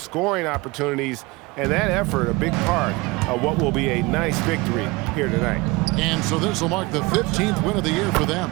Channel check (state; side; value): quieter; left; 23.8 dB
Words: opportunities, and that effort a big part of what will be a nice victory here tonight. And so this will mark the 15th win of the year for them.